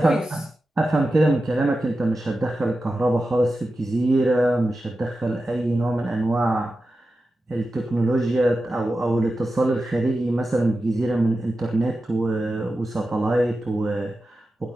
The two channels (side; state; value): both; normal; correlation 0.92